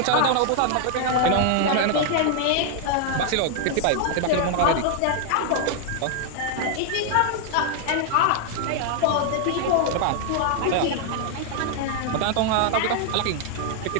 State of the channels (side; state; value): both; different; correlation 0.00